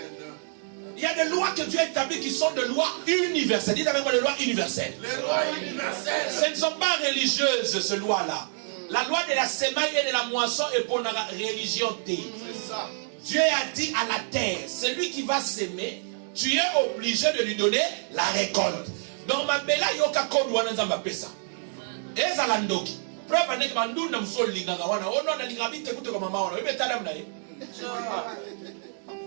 Il y a des lois que Dieu a établies qui sont des lois universelles. Dites avec moi des lois universelles. Ce ne sont pas religieuses, ces lois-là. La loi de la semaille et de la moisson est pour la religion. Dieu a dit à la terre, celui qui va s'aimer, tu es obligé de lui donner la récolte. Donc ma belle a yoka kodwa na pesa. Eza landoki. Preuve n'est que bandu na msoli linganga wana. Ono na lingabite kutoka mama wana. Wewe tadamu na yeye.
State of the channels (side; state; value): left; silent; 60 dB below the other